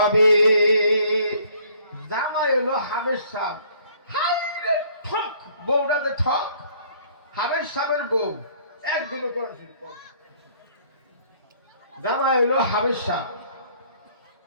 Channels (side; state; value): both; inverted; correlation -0.59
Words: জামাই হলো হাবেশ সাহেব। হাই রে ঠক, বউটা যে ঠক। হাবেশ সাহেবের বউ একদিনও কোরআন শরীফ পড়ে না। জামাই হলো হাবেশ সাহেব।